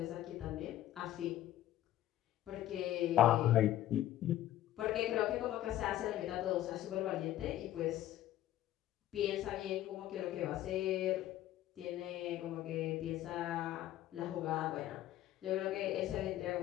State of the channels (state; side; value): quieter; right; 13.5 dB